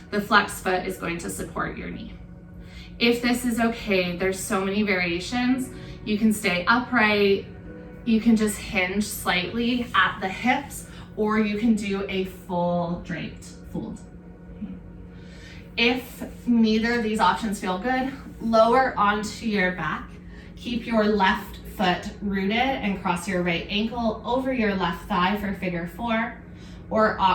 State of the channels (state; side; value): identical; both; correlation 1.00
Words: The flex foot is going to support your knee. If this is okay, there's so many variations. You can stay upright, you can just hinge slightly at the hips, or you can do a full draped fold. If neither of these options feel good, lower onto your back. Keep your left foot rooted and cross your right ankle over your left thigh for figure 4, or